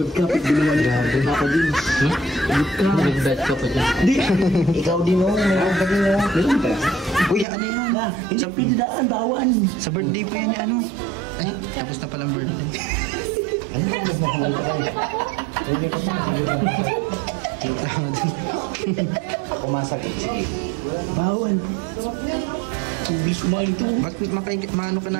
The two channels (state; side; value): drops out; left; at 7.5 s